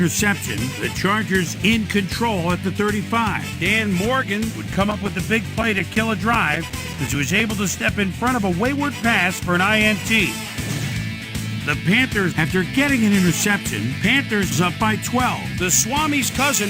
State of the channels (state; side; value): identical; both; correlation 1.00